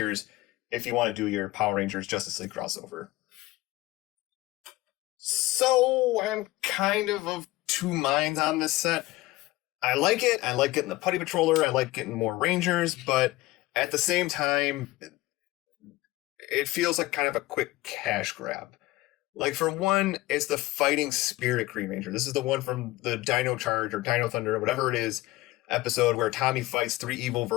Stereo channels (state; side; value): quieter; right; 19.0 dB